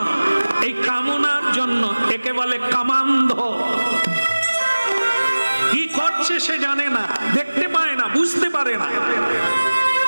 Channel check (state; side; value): inverted; both; correlation -1.00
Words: এই কামনার জন্য। একে বলে কামান্ধ। কি করছে সে জানে না, দেখতে পায় না, বুঝতে পারে না,